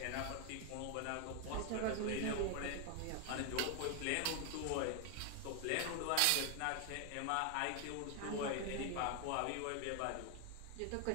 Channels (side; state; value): both; different; correlation 0.01